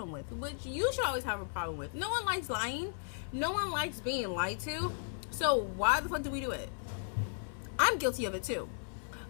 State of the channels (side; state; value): right; silent; 54 dB below the other